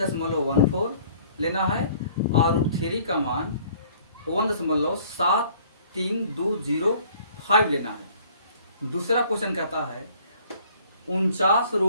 लेना है और रूट 3 का मान 1.73205 लेना है। दूसरा क्वेश्चन कहता है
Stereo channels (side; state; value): both; inverted; correlation -0.56